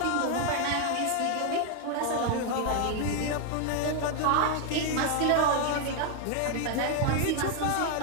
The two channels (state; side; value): different; both; correlation 0.00